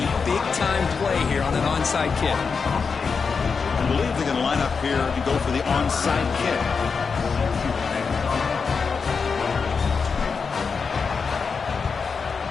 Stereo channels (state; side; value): quieter; right; 5.3 dB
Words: big-time play here on an onside kick. I believe they're going to line up here and go for the onside kick.